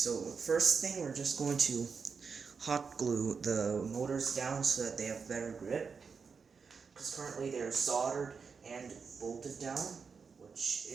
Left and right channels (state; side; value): quieter; left; 5.5 dB